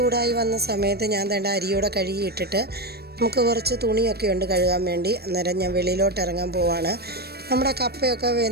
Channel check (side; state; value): left; late; 0.47 ms